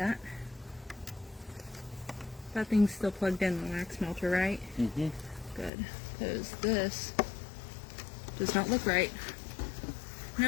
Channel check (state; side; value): drops out; right; at 5.7 s